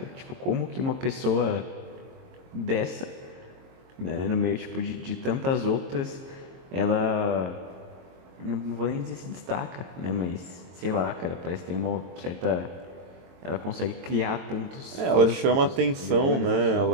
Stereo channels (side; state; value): left; late; 22 ms